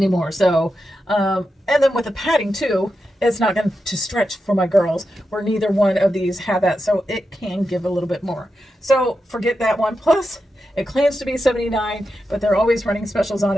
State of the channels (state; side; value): normal; both; correlation 0.88